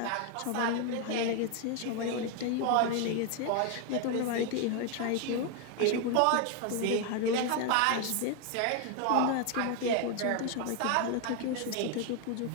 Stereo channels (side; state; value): both; different; correlation 0.01